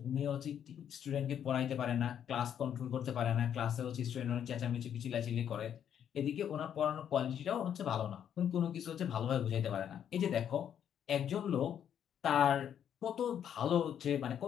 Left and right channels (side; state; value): right; quieter; 9.2 dB